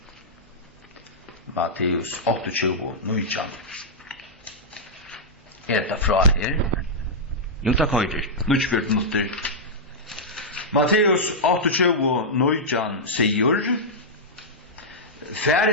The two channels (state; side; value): normal; both; correlation -0.10